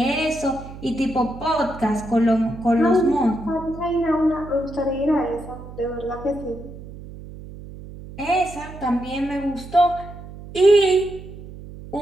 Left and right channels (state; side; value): noise; right; hum, 14 dB below the sound